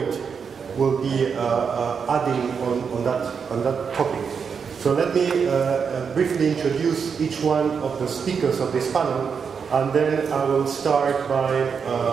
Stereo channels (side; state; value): left; quieter; 6.2 dB